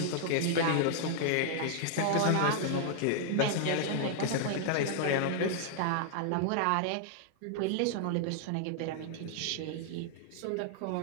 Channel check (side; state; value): both; different; correlation -0.01